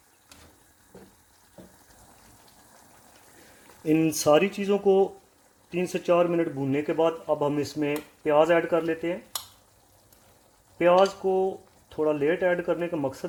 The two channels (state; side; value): identical; both; correlation 1.00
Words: इन सारी चीज़ों को 3 से 4 मिनट भूनने के बाद अब हम इसमें प्याज ऐड कर लेते हैं। प्याज को थोड़ा लेट ऐड करने का